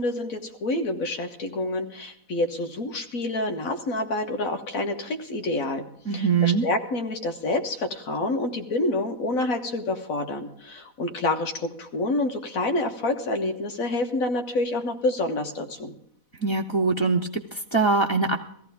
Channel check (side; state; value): right; late; 4.1 ms